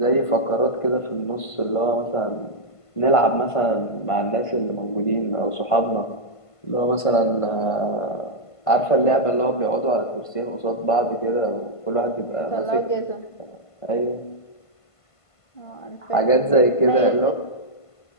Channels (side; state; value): right; late; 1.5 ms